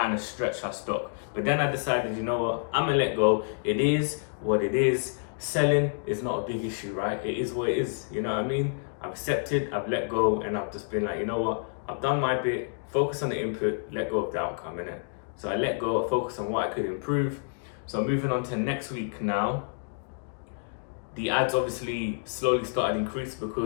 of stretch our stock. But then I decided, you know what, I'm gonna let go. It is what it is. Selling is not a big issue, right? It is what it is, you know what I mean? I've accepted, I've let go, and I've just been like, you know what, I've done my bit, focus on the input, let go of the outcome, innit? So I let go, focus on what I could improve. So moving on to next week now, the ads obviously slowly started increase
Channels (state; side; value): silent; right; digital silence